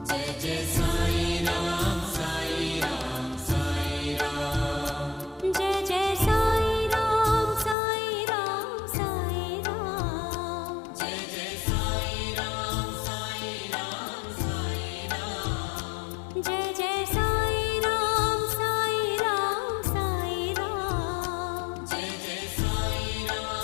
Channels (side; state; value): right; drops out; at 7.8 s